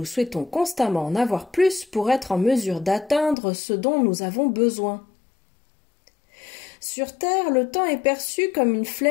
souhaitons constamment en avoir plus pour être en mesure d'atteindre ce dont nous avons besoin. Sur Terre, le temps est perçu comme une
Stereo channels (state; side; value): drops out; right; at 3.4 s